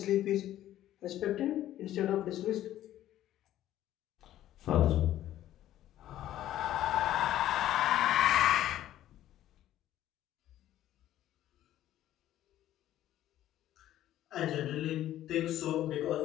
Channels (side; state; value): right; quieter; 13.0 dB